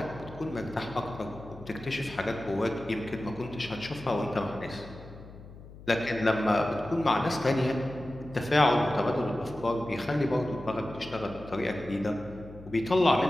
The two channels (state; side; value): noise; left; hum, 17 dB below the sound